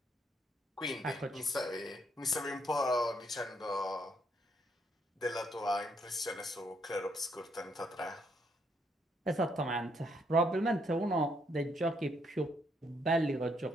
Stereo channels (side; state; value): both; normal; correlation 0.73